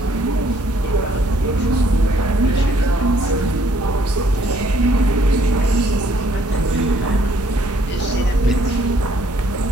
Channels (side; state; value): both; normal; correlation 0.65